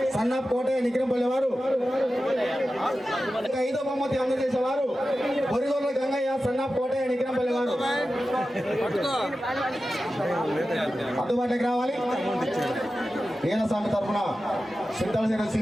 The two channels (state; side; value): normal; both; correlation 0.93